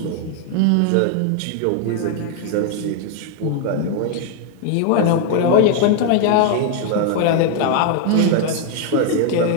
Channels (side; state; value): both; different; correlation 0.00